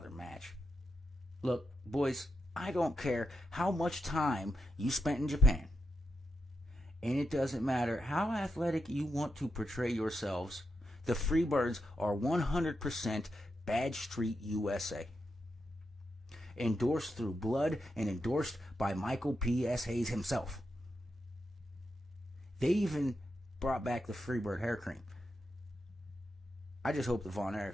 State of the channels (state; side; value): normal; both; correlation 0.86